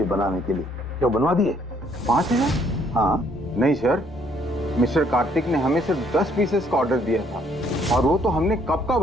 थी बनाने के लिए, क्या बनवा दिए? 5000? हाँ। नहीं सर, मिस्टर कार्तिक ने हमें सिर्फ 10 पीसेस का ऑर्डर दिया था और वो तो हमने कब का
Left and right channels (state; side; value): normal; both; correlation 0.66